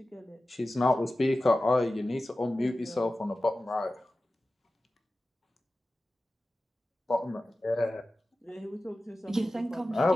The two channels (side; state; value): both; normal; correlation 0.95